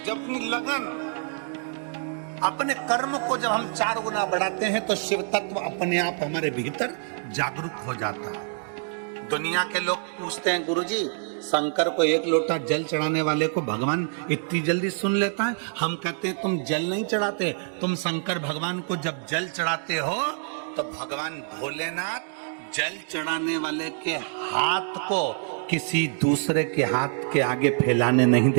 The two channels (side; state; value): left; silent; 61 dB below the other